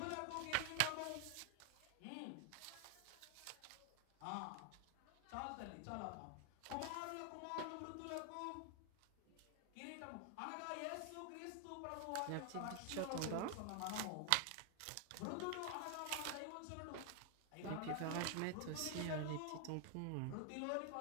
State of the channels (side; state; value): both; different; correlation 0.00